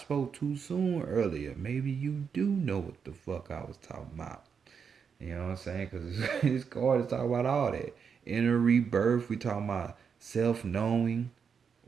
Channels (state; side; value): quieter; left; 6.5 dB